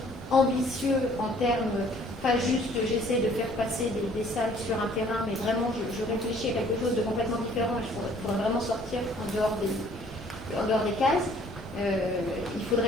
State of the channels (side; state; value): both; normal; correlation 0.57